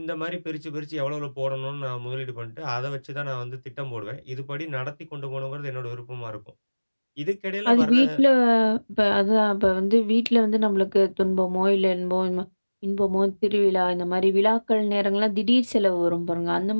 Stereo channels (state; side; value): inverted; both; correlation -1.00